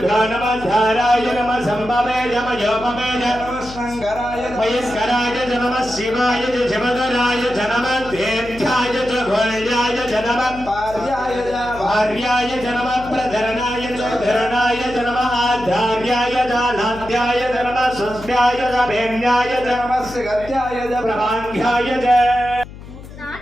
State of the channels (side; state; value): left; noise; hum, 15 dB below the sound